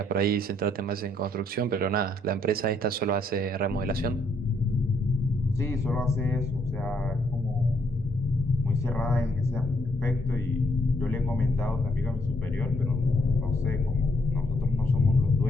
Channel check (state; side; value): normal; both; correlation 0.72